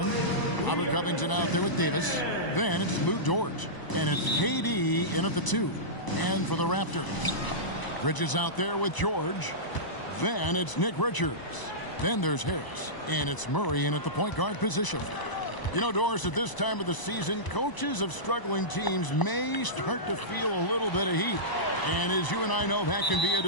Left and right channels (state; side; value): late; right; 1.0 ms